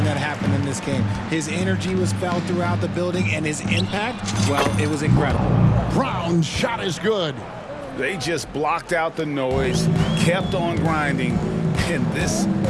that happened in this game. His energy was felt throughout the building, and his impact, well, it was incredible. Brown's shot is good. They just blocked out the noise, kept on grinding, and this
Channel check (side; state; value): both; identical; correlation 1.00